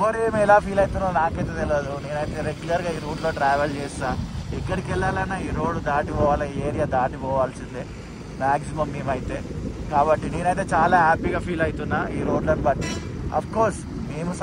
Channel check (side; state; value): both; identical; correlation 1.00